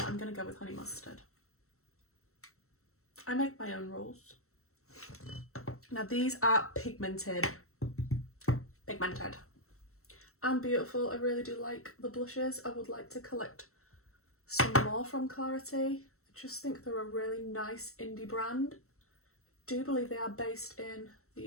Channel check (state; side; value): late; right; 0.63 ms